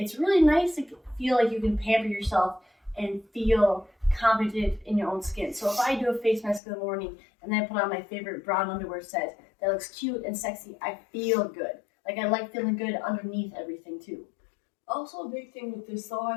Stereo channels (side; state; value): right; drops out; at 6.6 s